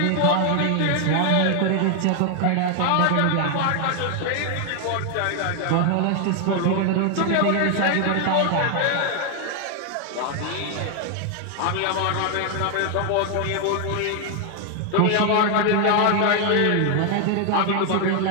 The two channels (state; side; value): different; both; correlation 0.00